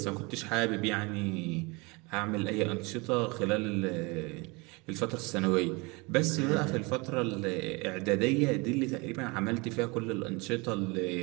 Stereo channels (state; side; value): quieter; left; 27.1 dB